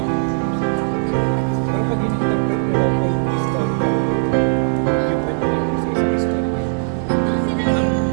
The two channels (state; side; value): silent; left; digital silence